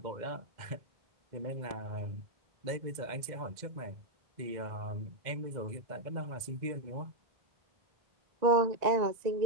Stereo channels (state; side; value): late; left; 2.0 ms